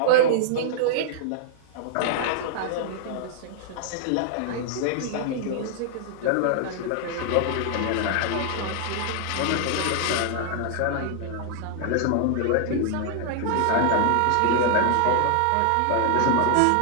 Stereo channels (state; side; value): different; both; correlation 0.00